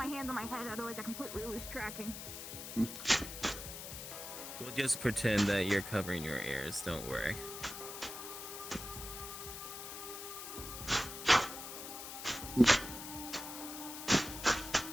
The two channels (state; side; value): noise; left; hiss, 9 dB below the sound